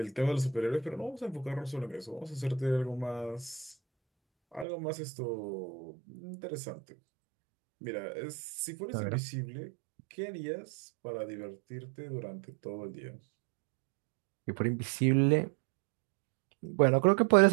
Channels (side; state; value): left; drops out; at 4.7 s